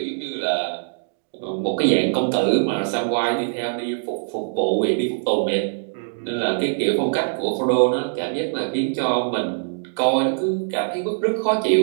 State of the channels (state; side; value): silent; left; digital silence